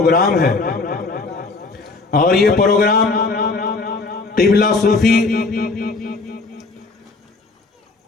ہے، اور یہ پروگرام قبلہ صوفی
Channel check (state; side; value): quieter; right; 3.7 dB